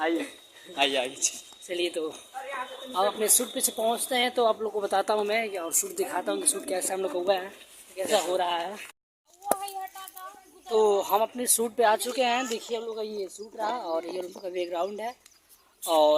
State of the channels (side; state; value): both; identical; correlation 1.00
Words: आइए चलिए तो अब अपने शूट पे से पहुंचते हैं तो आप लोग को बताता हूँ मैं, और शूट दिखाता हूँ कि शूट कैसे हम लोग हुआ है, कैसा हो रहा है। तो हम अपने शूट पे आ चुके हैं। देखिए हम लोग का ये शूट रहा और ये हम लोग का बैकग्राउंड है।